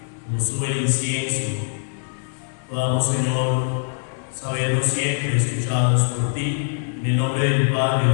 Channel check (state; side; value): silent; right; 64 dB below the other